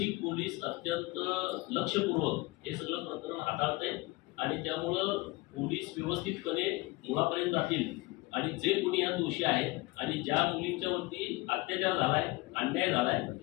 पोलीस अत्यंत लक्षपूर्वक हे सगळं प्रकरण हाताळत आहे आणि त्यामुळं पोलीस व्यवस्थितपणे मुळापर्यंत जातील आणि जे कोणी या दोषी आहेत आणि ज्या मुलींच्या वरती अत्याचार झालाय, अन्याय झालाय,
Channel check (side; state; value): right; quieter; 22.2 dB